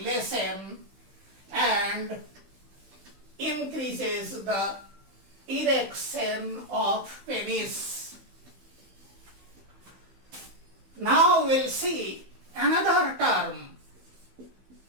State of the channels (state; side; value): late; left; 15 ms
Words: and increases the erection of penis. Now we'll see another term,